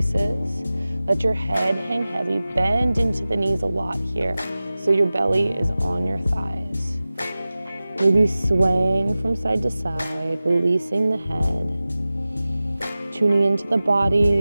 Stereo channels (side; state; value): both; inverted; correlation -0.96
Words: Let your head hang heavy, bend into the knees a lot here, so your belly is on your thighs. Maybe swaying from side to side, releasing the head, tuning into the